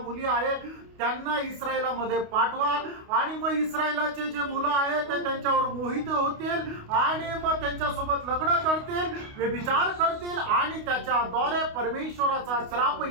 आहेत त्यांना इस्रायलामध्ये पाठवा. आणि मग इस्रायलाचे जे मुलं आहेत ते त्यांच्यावर मोहित होतील आणि मग त्यांच्यासोबत लग्न करतील, व्यभिचार करतील आणि त्याच्याद्वारे परमेश्वराचा श्राप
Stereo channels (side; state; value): left; late; 29 ms